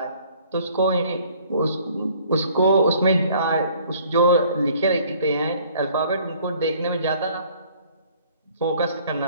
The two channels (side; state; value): both; inverted; correlation -0.57